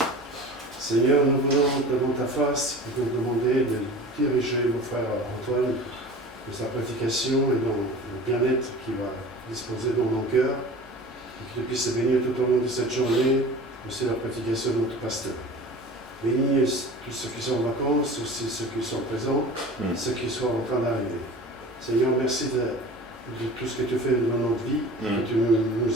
Seigneur, nous venons devant ta face pour te demander de diriger mon frère Antoine dans sa prédication et dans le bien-être qu'il va disposer dans nos cœurs, et qu'il puisse se bénir tout au long de cette journée, aussi la prédication de notre pasteur. Bénis tous ceux qui sont en vacances, aussi ceux qui sont présents, ceux qui sont en train d'arriver. Seigneur, merci de tout ce que tu fais dans notre vie, que tu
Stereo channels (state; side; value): normal; both; correlation 0.38